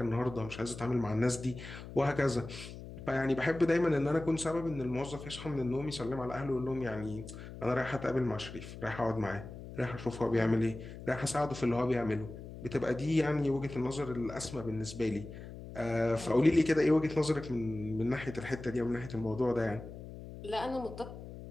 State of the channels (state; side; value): noise; left; hum, 12 dB below the sound